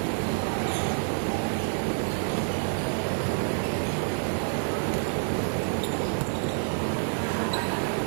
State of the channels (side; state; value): left; silent; 59 dB below the other